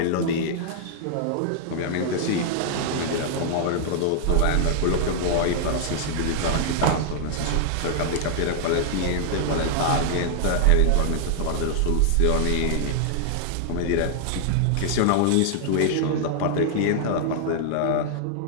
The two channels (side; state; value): both; different; correlation -0.01